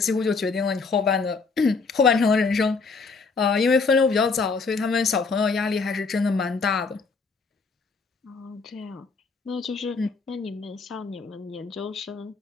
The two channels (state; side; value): quieter; right; 4.5 dB